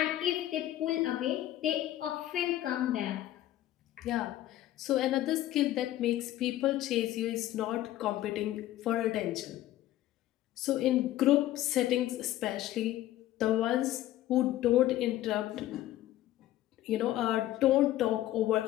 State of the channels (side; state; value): right; quieter; 14.1 dB